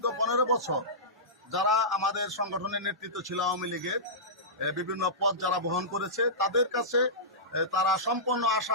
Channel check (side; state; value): both; normal; correlation -0.17